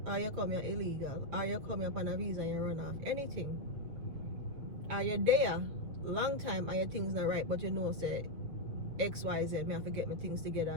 or you come here illegal, or you come here upon a visa and you run off, anything, or you're there long time and your things not right, but you know say XYZ, may I forget my things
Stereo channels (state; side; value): late; left; 7.5 ms